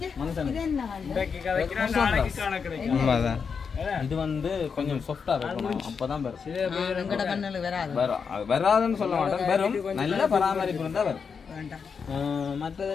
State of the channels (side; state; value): right; quieter; 6.0 dB